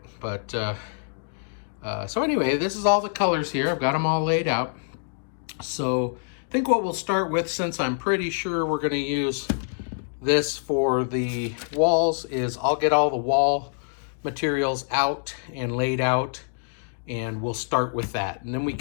but so anyway, this is all the colors here. I've got them all laid out. So I think what we'll start with, since I'm pretty sure we're going to use this for the walls, is I'll get all the wall materials out and laid out, and we'll start with that. And then we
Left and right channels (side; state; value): right; silent; digital silence